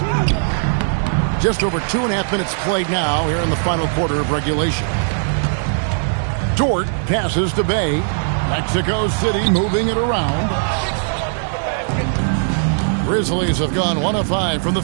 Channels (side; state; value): left; silent; digital silence